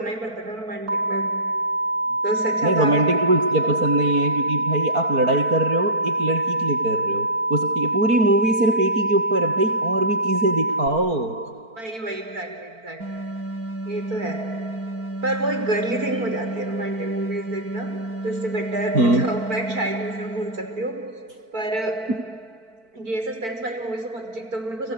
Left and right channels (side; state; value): left; late; 4.5 ms